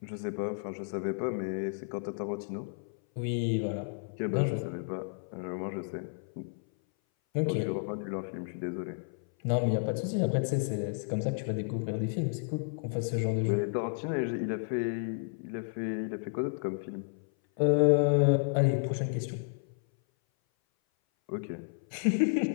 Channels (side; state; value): right; silent; 56 dB below the other